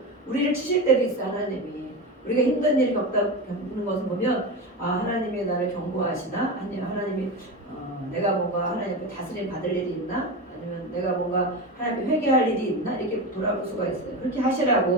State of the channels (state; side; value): normal; both; correlation 0.22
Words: 우리를 치실 때도 있어 하나님이. 우리가 힘든 일이 겪는 것을 보면 하나님이 나를 경고하시나? 아니면 하나님이 내가 뭔가 하나님 앞에 다스림 받을 일이 있나? 아니면 내가 뭔가 하나님 앞에 회개할 일이 있나? 이렇게 돌아볼 수가 있어요. 그렇게